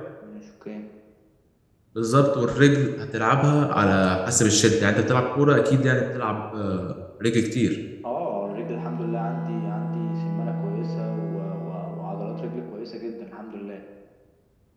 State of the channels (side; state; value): both; identical; correlation 1.00